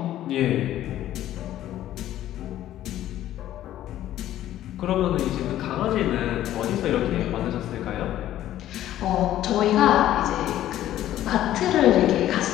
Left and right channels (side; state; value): right; quieter; 12.9 dB